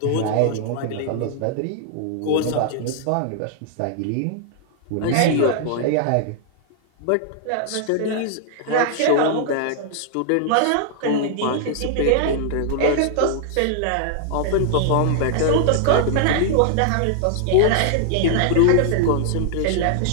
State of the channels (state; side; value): different; both; correlation -0.01